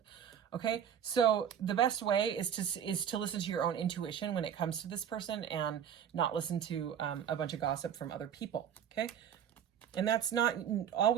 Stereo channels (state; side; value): quieter; left; 8.8 dB